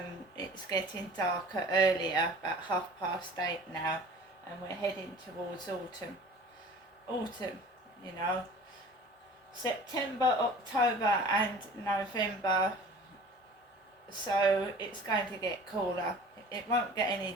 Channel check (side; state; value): both; normal; correlation 0.44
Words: It's getting darker earlier, about 8:30 now, and we're heading towards autumn. Autumn, you know, September, October and November, so it's going to get cooler. It won't get any